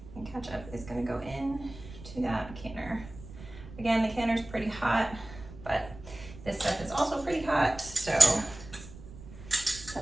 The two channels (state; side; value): noise; right; rumble, 16 dB below the sound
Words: and ketchup is gonna go in to that canner. Again, the canner's pretty hot, but this stuff is also pretty hot, so